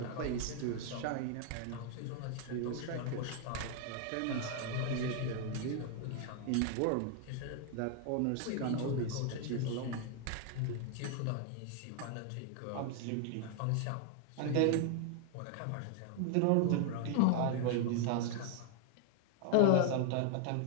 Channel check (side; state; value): both; different; correlation 0.00